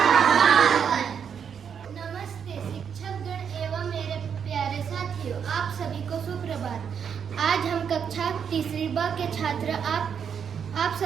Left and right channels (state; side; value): quieter; left; 7.4 dB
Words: नमस्ते शिक्षकगण एवं मेरे प्यारे साथियों, आप सभी को सुप्रभात। आज हम कक्षा तीसरी ब के छात्र आप